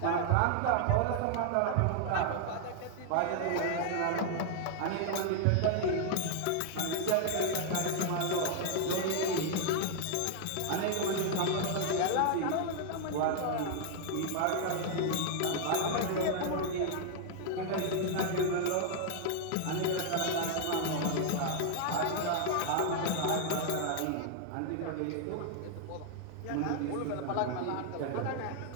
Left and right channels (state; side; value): different; both; correlation 0.00